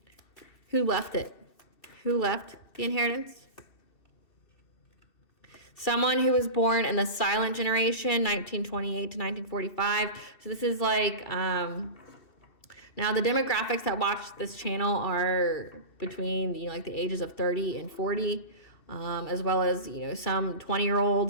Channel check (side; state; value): right; late; 2.7 ms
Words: Who left it? Who left the inheritance? Someone who was born in the silent generation, 1928 to 1945. So this is like, now the demographics that watch this channel are between, like the ages of 30 and 40, as well as, some 20-year-olds